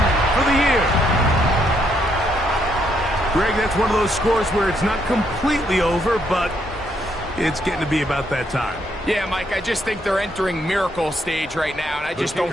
for the year. Greg, that's one of those scores where it's not completely over, but it's getting to be about that time. Yeah, Mike, I just think they're entering miracle stage right now, and I just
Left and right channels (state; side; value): normal; both; correlation 0.74